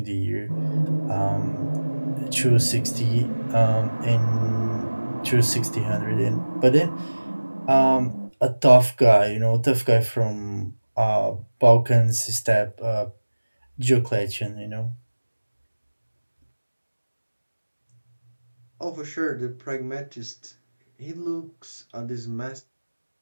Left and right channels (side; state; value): both; inverted; correlation -1.00